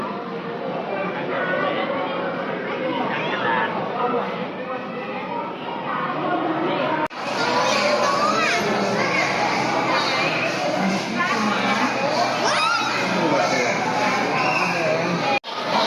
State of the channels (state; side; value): identical; both; correlation 1.00